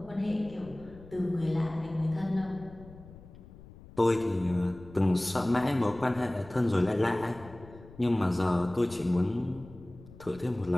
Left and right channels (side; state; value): left; noise; rumble, 19 dB below the sound